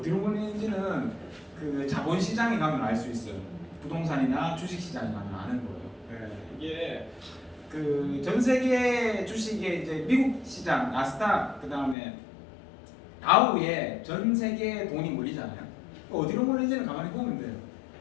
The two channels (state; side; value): drops out; right; at 12.0 s